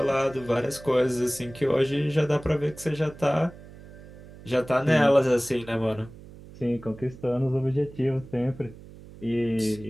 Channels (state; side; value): noise; right; hum, 18 dB below the sound